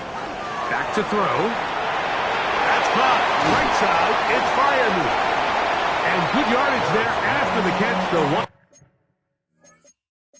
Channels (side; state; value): both; identical; correlation 1.00